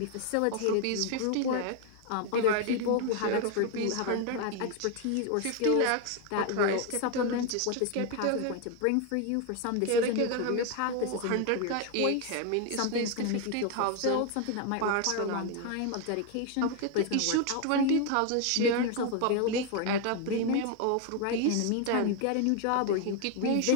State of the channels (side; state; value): both; different; correlation 0.01